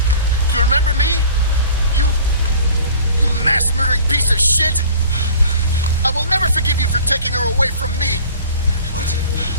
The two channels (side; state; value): both; inverted; correlation -0.45